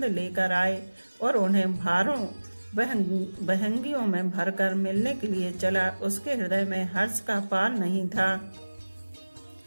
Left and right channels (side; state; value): both; inverted; correlation -1.00